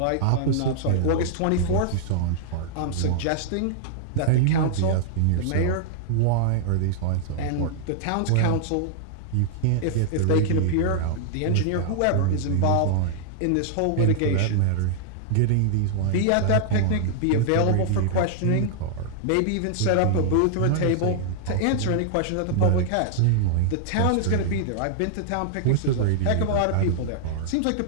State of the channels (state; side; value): different; both; correlation -0.01